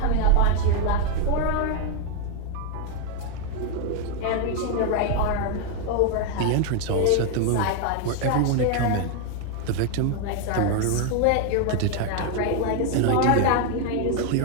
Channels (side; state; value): both; different; correlation 0.00